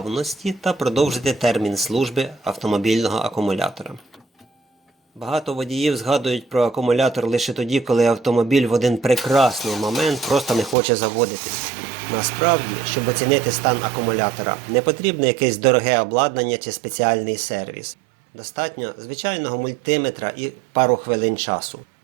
та продовжити термін служби автомобільного акумулятора. Багато водіїв згадують про акумулятор лише тоді, коли автомобіль в один прекрасний момент просто не хоче заводитись. Насправді, щоб оцінити стан акумулятора, не потрібне якесь дороге обладнання чи спеціальний сервіс. Достатньо звичайного мультиметра і пару хвилин часу.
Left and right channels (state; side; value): drops out; left; at 10.8 s